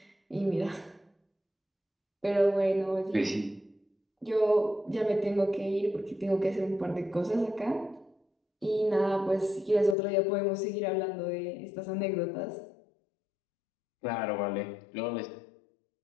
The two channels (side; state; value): right; drops out; at 10.0 s